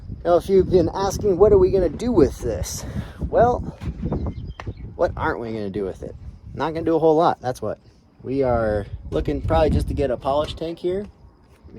Now, if you've been asking, what are we gonna do with this? Well, what aren't we gonna do with it? Not gonna do a whole lot. That's what we are looking, probably just to get a polish tank here.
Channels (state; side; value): identical; both; correlation 1.00